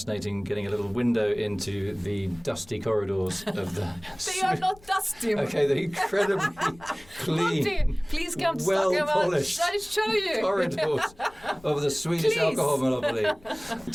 getting a little window into the dusty corridors of the... They are not dusty. Okay, they're incredibly clean. Monty, please come to well-polished I'll show you. corridors of the Swedish alcohol monopoly.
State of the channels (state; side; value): noise; left; rumble, 24 dB below the sound